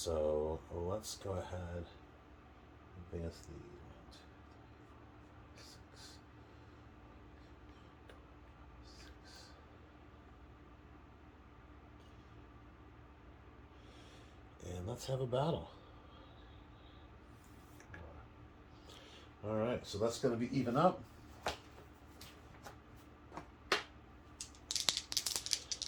let's go ahead and advance the 1, 2, 3, 4, 5, 6. And let's have a battle. All right, so that's going to be even up.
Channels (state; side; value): identical; both; correlation 1.00